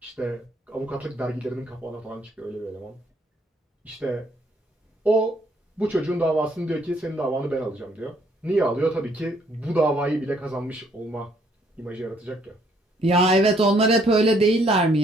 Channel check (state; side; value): normal; both; correlation 0.67